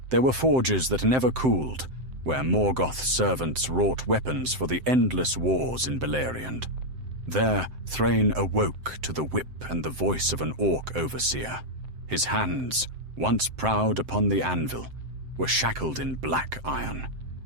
There were forges that never cooled, where Morgoth's servants wrought weapons for the endless wars in Beleriand. There, Thrain awoke to the whip and the voice of an orc overseer. His hands, once proud upon the anvil, were shackled in black iron,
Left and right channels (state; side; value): late; left; 7.7 ms